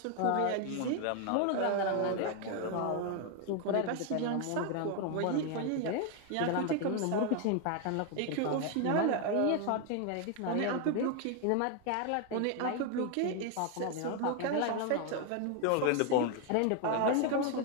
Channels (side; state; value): both; different; correlation 0.01